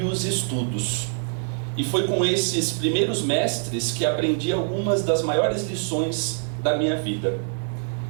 os estudos. E foi com esses primeiros mestres que aprendi algumas das maiores lições da minha vida.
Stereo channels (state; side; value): silent; left; digital silence